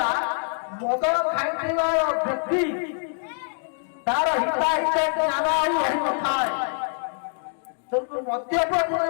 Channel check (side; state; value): right; silent; digital silence